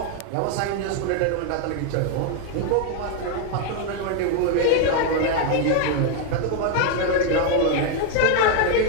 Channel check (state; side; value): different; both; correlation 0.01